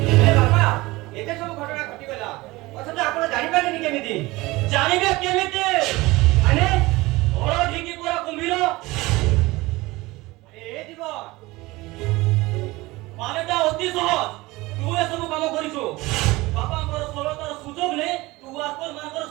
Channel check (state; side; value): quieter; left; 20.8 dB